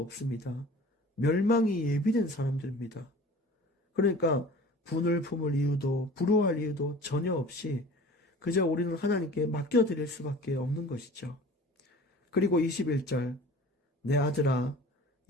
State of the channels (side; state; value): both; normal; correlation 0.43